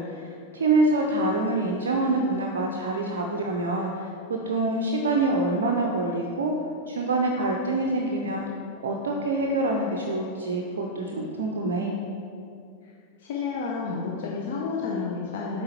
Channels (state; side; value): normal; both; correlation -0.02